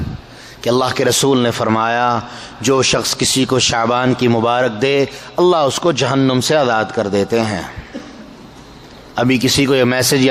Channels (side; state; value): both; identical; correlation 1.00